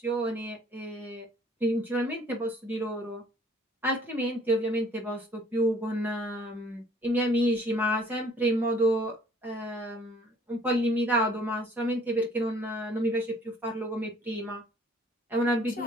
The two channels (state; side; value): normal; both; correlation 0.57